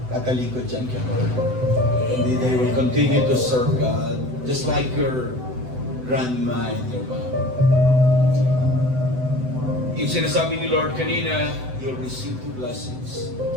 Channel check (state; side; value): late; left; 7.9 ms